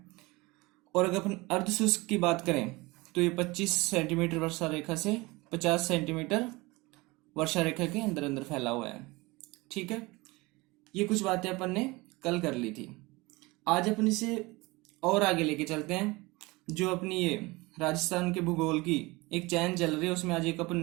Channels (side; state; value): left; quieter; 23.0 dB